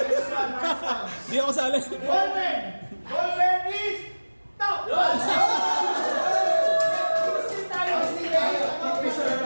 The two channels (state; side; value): inverted; both; correlation -1.00